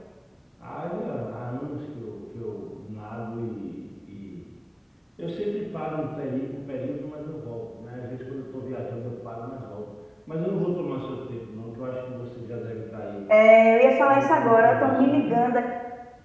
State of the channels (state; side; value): identical; both; correlation 1.00